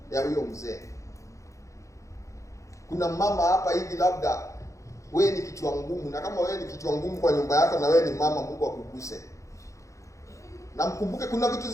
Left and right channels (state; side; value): late; right; 0.15 ms